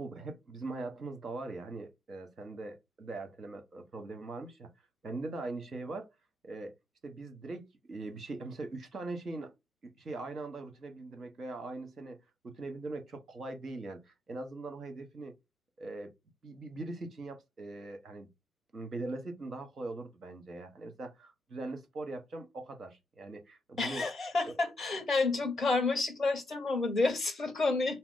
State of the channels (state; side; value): normal; both; correlation 0.80